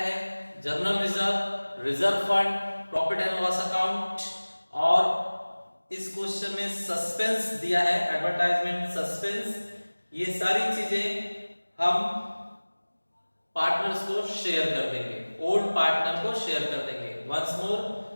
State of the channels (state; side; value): inverted; both; correlation -1.00